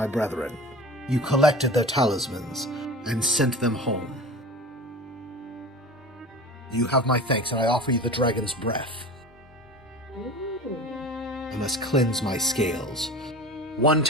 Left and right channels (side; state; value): both; normal; correlation 0.35